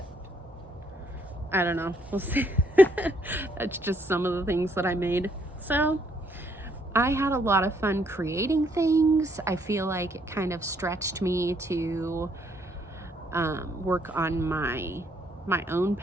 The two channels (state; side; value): normal; both; correlation 0.70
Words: I don't know, we'll see. That's just some of the things that I made. So I had a lot of fun creating things. I feel like it kind of stretched me to work on my own